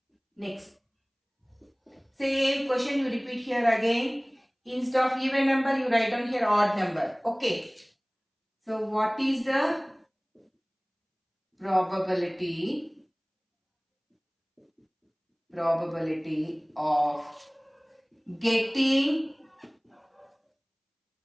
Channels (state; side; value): identical; both; correlation 1.00